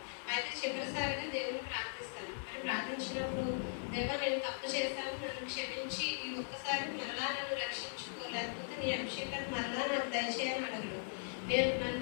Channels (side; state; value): right; silent; 52 dB below the other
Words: అయితే చివరిసారిగా దేవుని ప్రార్థిస్తాను. మరి ప్రార్థించినప్పుడు, దేవా నేను తప్పు చేశాను, నన్ను క్షమించి ఈ ఒక్కసారి మరలా నన్ను రక్షించుకో, లేకపోతే నీ అభిషేకాన్ని మరలా నాకు దయచేయని అడగడు. నేను